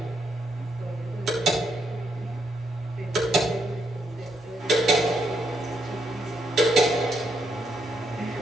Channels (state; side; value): normal; both; correlation 0.76